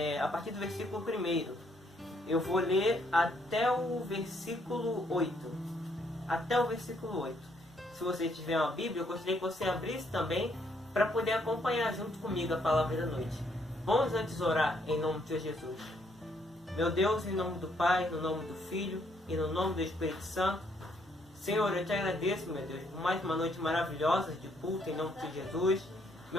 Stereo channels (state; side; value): normal; both; correlation 0.71